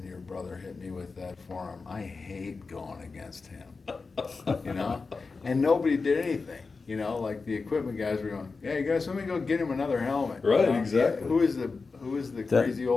your brother hit me with that forearm. I hate going against him." You know? And nobody did anything. You know, like the equipment guys were going, "Yeah, you guys, let me go get him another helmet." Right, You know? exactly. Who is the crazy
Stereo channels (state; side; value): quieter; right; 4.3 dB